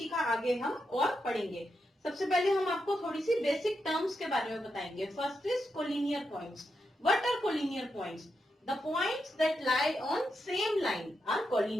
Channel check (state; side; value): normal; both; correlation 0.85